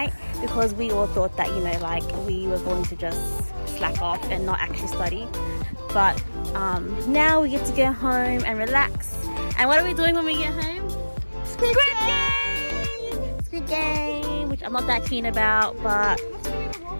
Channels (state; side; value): inverted; both; correlation -1.00